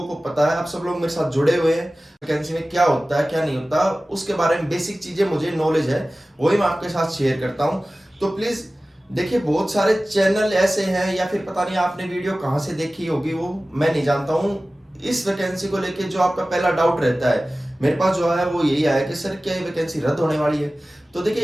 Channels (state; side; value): normal; both; correlation 0.97